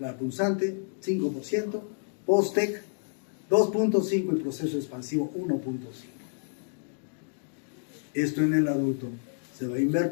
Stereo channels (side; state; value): right; silent; digital silence